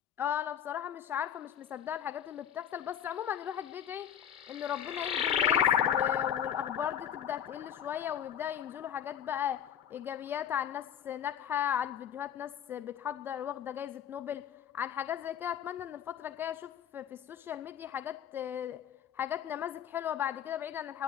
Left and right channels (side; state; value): right; quieter; 9.1 dB